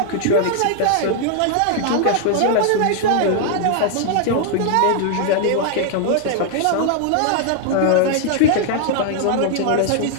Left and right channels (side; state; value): both; different; correlation 0.00